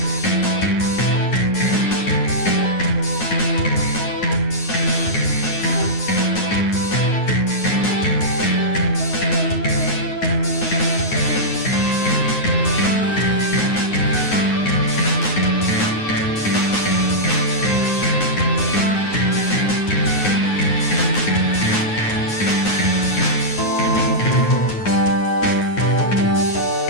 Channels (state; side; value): late; right; 9.5 ms